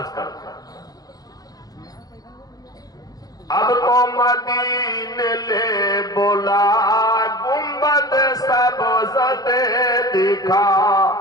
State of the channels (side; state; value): right; late; 0.18 ms